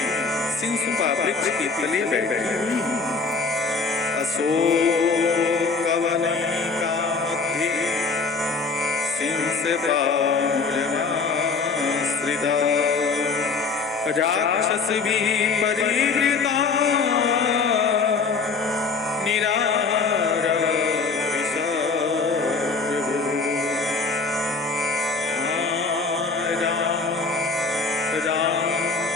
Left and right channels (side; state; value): right; quieter; 4.5 dB